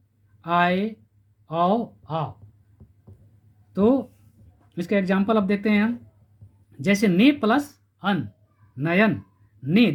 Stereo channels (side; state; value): both; identical; correlation 1.00